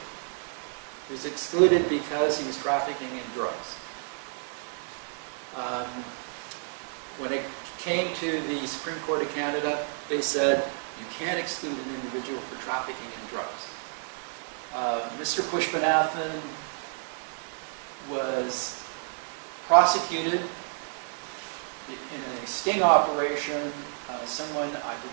He was excluded because he was trafficking in drugs. When it came to the Supreme Court of Canada, they said, you can't exclude an individual for trafficking in drugs. Mr. Pushpanathan was prosecuted in a sting operation. Someone, I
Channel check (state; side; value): silent; left; 58 dB below the other